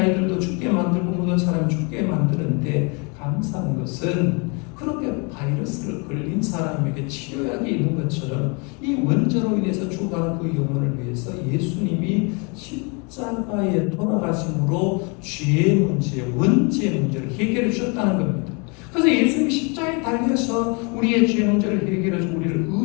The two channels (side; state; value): right; quieter; 32.7 dB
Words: 죽게 만들고 모든 사람이 죽게 만드는데 감사한 것은 그렇게 바이러스를 걸린 사람에게 치료약이 있는 것처럼 이 원죄로 인해서 죽어가는 그 영혼을 위해서 예수님이 십자가에 돌아가심으로 죄의 문제, 원죄의 문제를 해결해 주셨다는 겁니다. 그래서 예수님이 십자가에 달려서 우리의 죄 문제를 해결해 주고 우리를